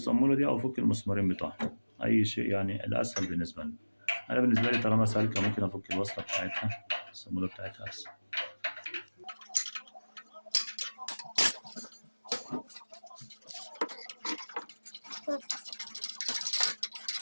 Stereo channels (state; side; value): inverted; both; correlation -1.00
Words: دي او افك المسمارين بتوعها، اي شيء يعني الاسهل بالنسبة لي. انا بالنسبة لي طالما سالكة ممكن افك الوصلة بتاعتها، الصامولة بتاعتها اسهل.